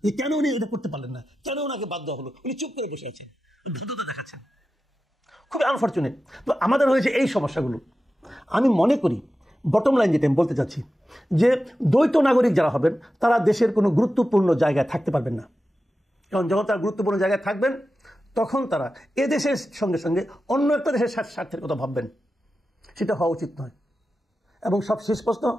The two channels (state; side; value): normal; both; correlation 0.92